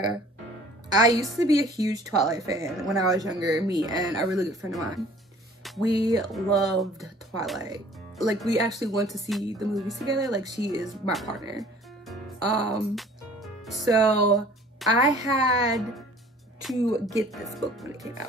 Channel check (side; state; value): both; normal; correlation 0.51